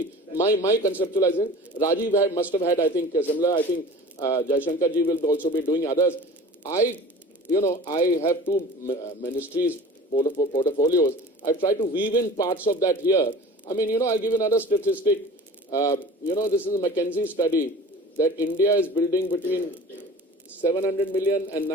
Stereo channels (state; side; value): normal; both; correlation 0.41